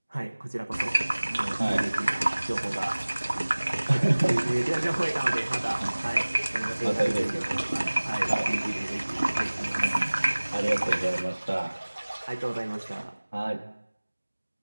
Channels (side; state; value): both; inverted; correlation -1.00